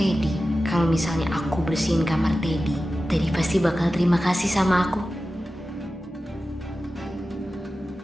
Kalau misalnya aku bersihin kamar Teddy, Teddy pasti bakal terima kasih sama aku.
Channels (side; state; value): both; normal; correlation 0.94